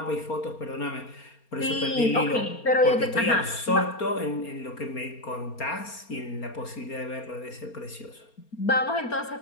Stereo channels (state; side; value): late; right; 4.3 ms